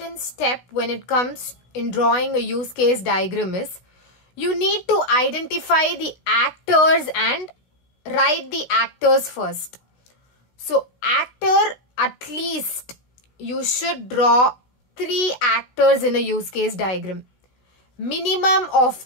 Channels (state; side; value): late; right; 16 ms